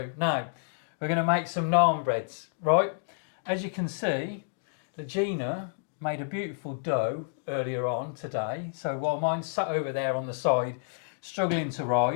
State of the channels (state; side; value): silent; right; digital silence